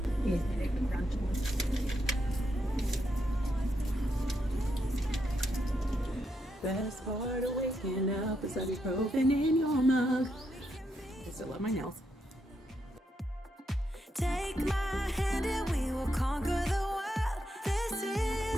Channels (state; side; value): normal; both; correlation 0.81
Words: Best part of waking up is ibuprofen in your mug. I still love my nails. Take my hand and we will conquer the world. This